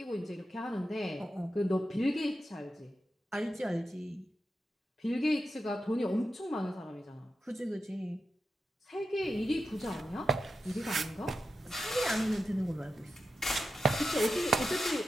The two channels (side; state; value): both; normal; correlation 0.89